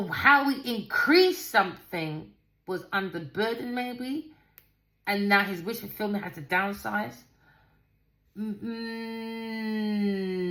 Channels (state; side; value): identical; both; correlation 1.00